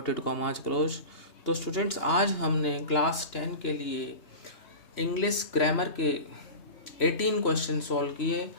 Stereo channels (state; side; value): late; right; 3.0 ms